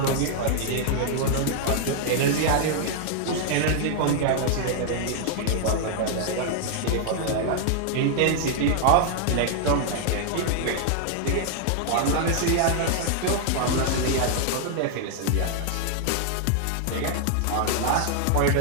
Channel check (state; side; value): different; both; correlation 0.00